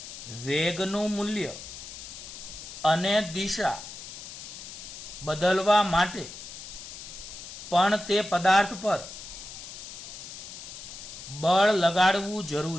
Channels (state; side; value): noise; left; hiss, 12 dB below the sound